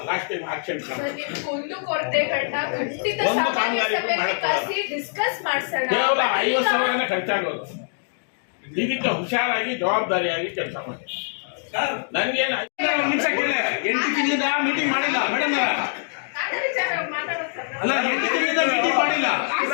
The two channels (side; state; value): right; silent; digital silence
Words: ಲಾಸ್ಟ್ ಟೈಮ್ ಆಕ್ಷನ್ ಒಂದು ಕಾಮಗಾರಿನೂ ಮಾಡೋಕ್ಕಾಗಲ್ಲ. ಕೇವಲ 50,000 ಖರ್ಚಾಗೋದು. ಇದಕ್ಕೆ ಹುಷಾರಾಗಿ ಜವಾಬ್ದಾರಿಯಾಗಿ ಕೆಲಸ ಮಾಡಿ. ನನ್ಗೇನು 8 ತಿಂಗಳಿಂದ ಮೀಟಿಂಗ್ ಮಾಡಿಲ್ಲ ಮೇಡಮ್. ಅಲ್ಲ 8 ತಿಂಗಳಿಂದ ಮೀಟಿಂಗ್ ಮಾಡಿಲ್ಲ.